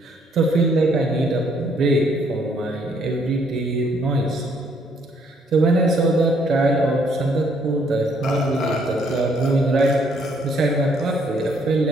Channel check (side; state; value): both; normal; correlation 0.67